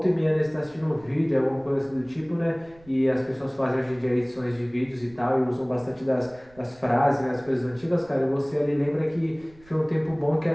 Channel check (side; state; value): right; noise; rumble, 27 dB below the sound